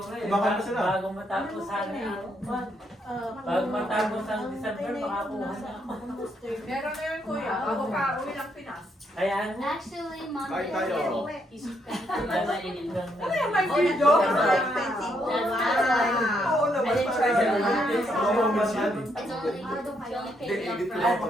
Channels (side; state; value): both; normal; correlation 0.75